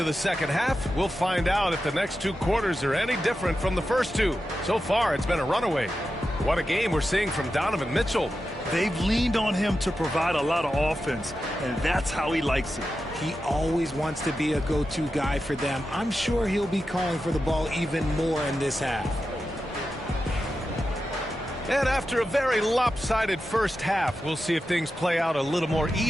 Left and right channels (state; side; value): normal; both; correlation 0.90